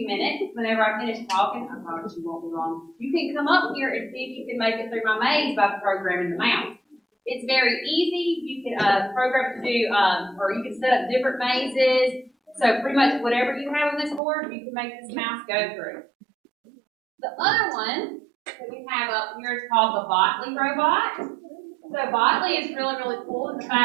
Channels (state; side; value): drops out; left; at 14.2 s